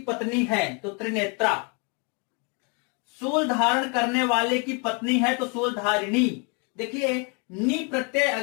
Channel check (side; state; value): right; quieter; 34.3 dB